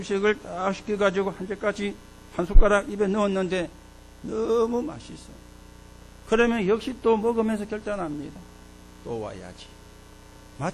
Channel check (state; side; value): identical; both; correlation 1.00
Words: 딱 시켜가지고 한 젓가락, 한 숟가락 입에 넣었는데 너무 맛있어. 그러면 역시 또 먹으면서 결단합니다. 또 와야지.